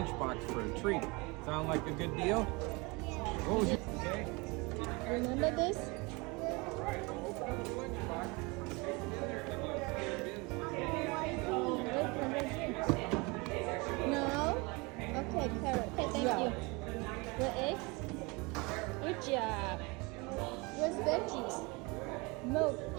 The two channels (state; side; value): quieter; left; 26.8 dB